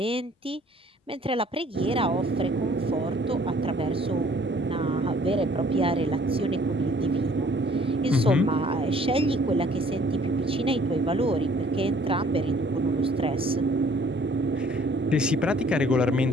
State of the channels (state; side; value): normal; both; correlation 0.57